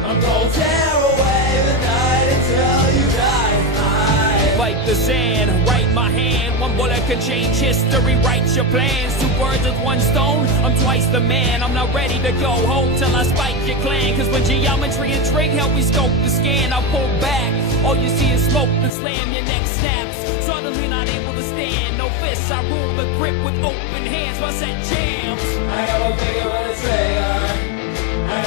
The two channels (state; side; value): drops out; right; at 18.9 s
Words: I'm gonna tear away the night until you die. Fight the sand, write my hand. One bullet can change history, write your plans. Two birds with one stone, I'm twice the man. I'm not ready to go home till I spike your clan. Cause when geometry and trig help me scope the scan, I pull back, all you see is smoke and slam, your neck snaps. Suddenly not able to stand, no fists, I rule the grip with open hands. My set jams. I got my finger on the trigger. I